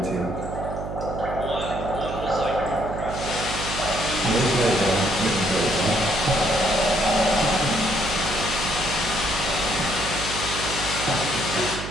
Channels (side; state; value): right; noise; hum, 7 dB below the sound